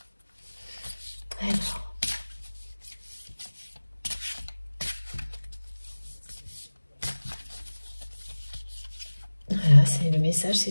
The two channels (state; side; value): inverted; both; correlation -1.00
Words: Alors, voilà, c'est le message,